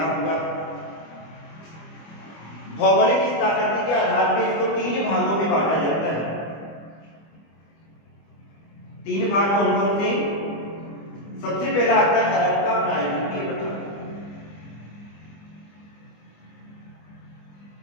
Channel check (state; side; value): late; right; 25 ms